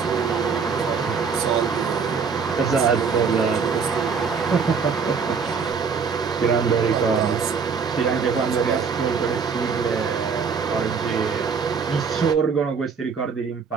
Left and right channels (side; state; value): left; quieter; 5.7 dB